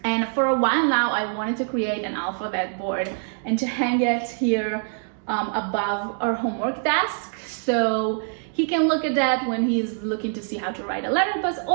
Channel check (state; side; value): silent; left; 62 dB below the other